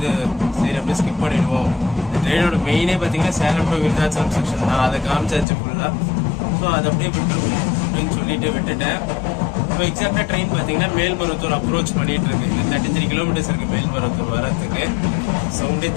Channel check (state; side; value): drops out; right; at 5.5 s